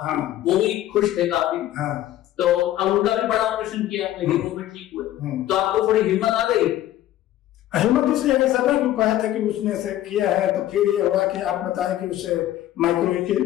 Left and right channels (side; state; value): right; quieter; 13.5 dB